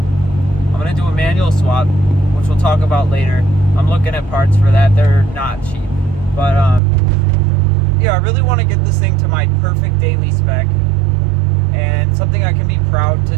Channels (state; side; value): drops out; left; at 6.8 s